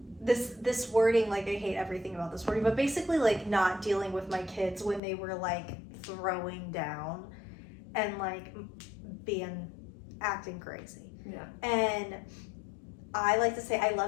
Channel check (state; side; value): drops out; right; at 5.0 s